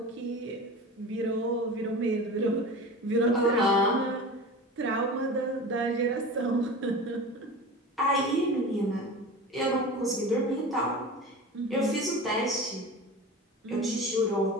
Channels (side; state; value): both; normal; correlation 0.33